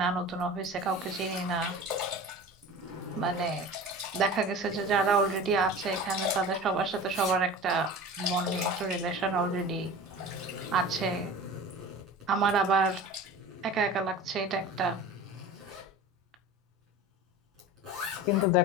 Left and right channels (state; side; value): normal; both; correlation 0.36